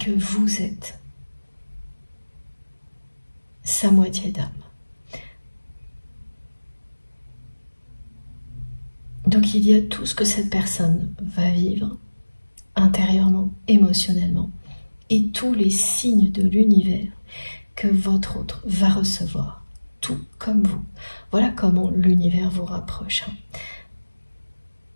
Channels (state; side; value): inverted; both; correlation -1.00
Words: vous êtes sa moitié d'âme. Donc il y a tout ce que cette personne va vivre intérieurement, émotionnellement, et tous les signes de l'univers que votre autre va recevoir, tout comme vous. Voilà comment l'univers vous rapproche.